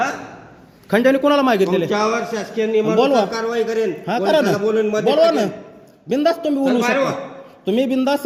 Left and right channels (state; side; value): identical; both; correlation 1.00